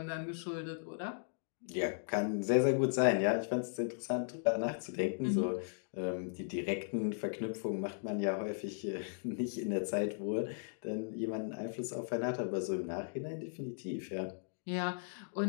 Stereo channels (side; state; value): right; silent; digital silence